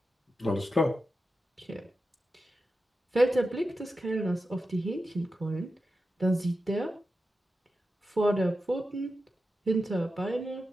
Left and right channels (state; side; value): normal; both; correlation 0.91